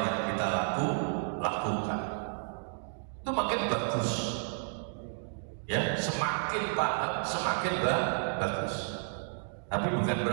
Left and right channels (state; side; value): silent; left; digital silence